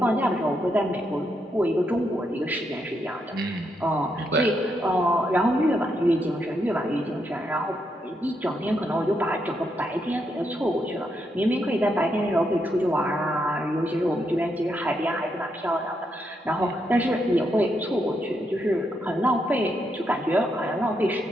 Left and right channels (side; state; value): both; normal; correlation 0.80